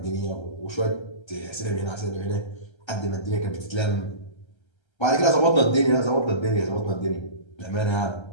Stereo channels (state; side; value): late; right; 1.3 ms